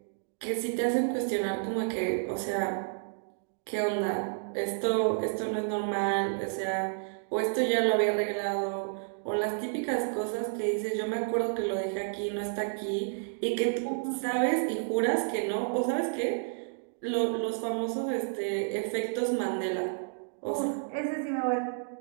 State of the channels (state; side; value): silent; left; digital silence